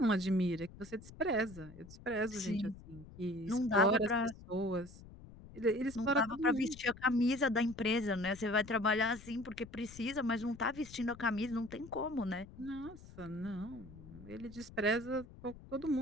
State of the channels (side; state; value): left; noise; rumble, 18 dB below the sound